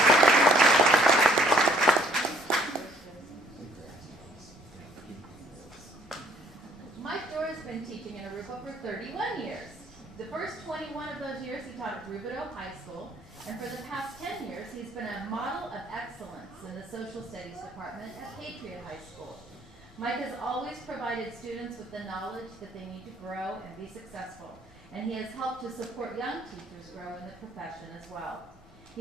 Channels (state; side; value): normal; both; correlation 0.61